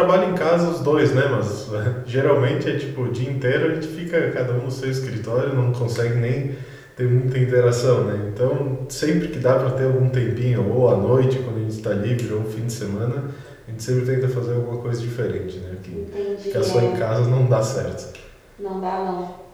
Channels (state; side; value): identical; both; correlation 1.00